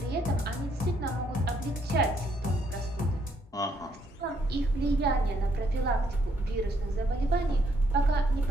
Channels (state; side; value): normal; both; correlation 0.71